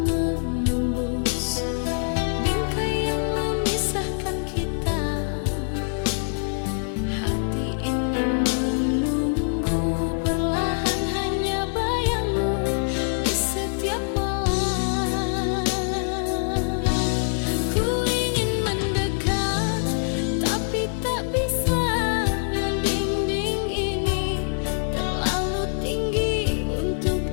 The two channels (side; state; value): right; silent; digital silence